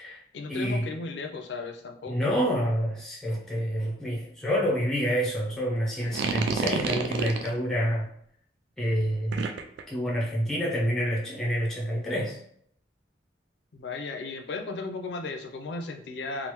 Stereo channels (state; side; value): normal; both; correlation 0.64